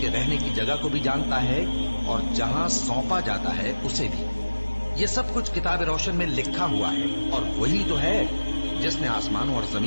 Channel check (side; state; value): both; inverted; correlation -1.00